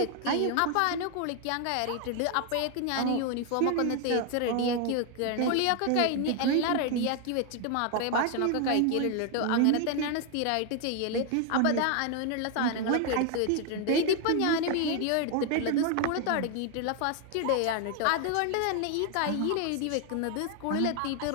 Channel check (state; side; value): different; both; correlation 0.01